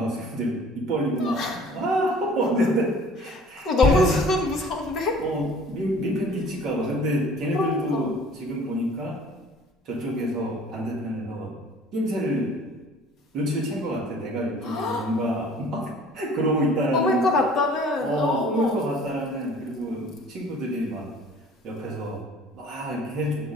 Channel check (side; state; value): both; normal; correlation 0.50